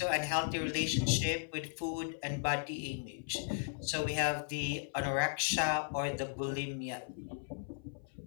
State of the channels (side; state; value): right; silent; 54 dB below the other